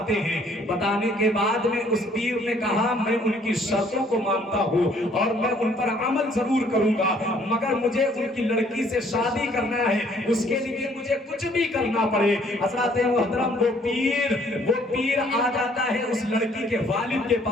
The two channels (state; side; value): normal; both; correlation 0.61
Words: ہیں۔ بتانے کے بعد میں اس پیر نے کہا میں ان کی شرطوں کو مانتا ہوں اور میں ان پر عمل ضرور کروں گا، مگر مجھے ان کی لڑکی سے شادی کرنا ہے، اس کے لیے مجھے کچھ بھی کرنا پڑے۔ حضرات محترم وہ پیر آ جاتا ہے اس لڑکی کے والد کے